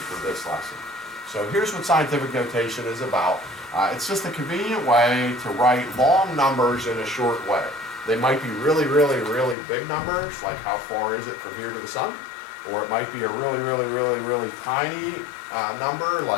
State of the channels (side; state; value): right; drops out; at 9.6 s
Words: this lesson. So here's what scientific notation is about. It's just a convenient way to write long numbers in a short way. They might be really, really, really big numbers, like how far is it from here to the sun? Or it might be a really, really, really, really tiny number,